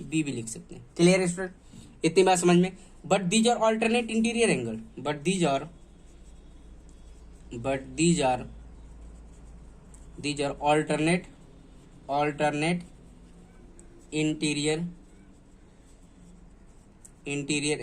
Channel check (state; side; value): identical; both; correlation 1.00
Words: बी भी लिख सकते हैं। क्लियर है स्टूडेंट? इतनी बात समझ में। But these are alternate interior angle, but these are alternate interior